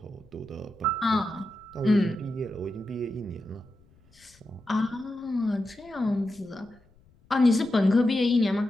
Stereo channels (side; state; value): left; noise; rumble, 30 dB below the sound